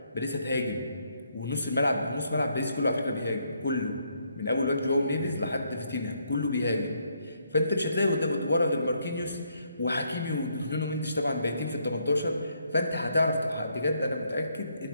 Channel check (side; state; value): both; inverted; correlation -0.73